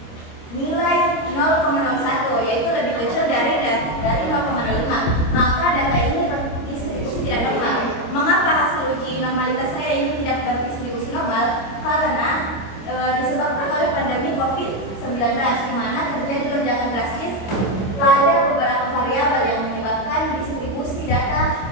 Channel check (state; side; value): late; right; 26 ms